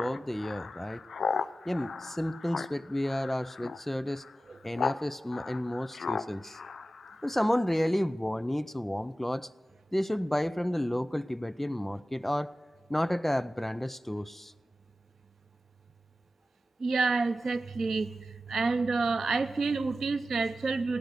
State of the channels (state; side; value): normal; both; correlation 0.94